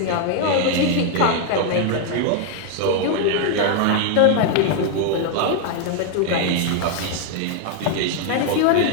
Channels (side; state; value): both; different; correlation 0.00